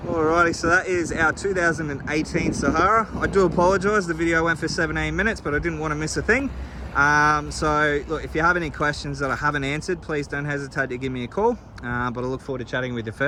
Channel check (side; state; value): both; identical; correlation 1.00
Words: Alrighty, so that is our 2018 Sahara. I do apologise, the video went for 17 minutes, but I didn't want to miss a thing. So look, if you have any questions that I haven't answered, please don't hesitate to give me a call. But I look forward to chatting with you